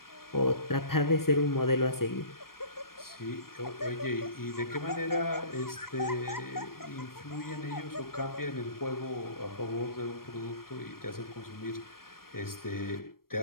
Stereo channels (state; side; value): late; right; 0.93 ms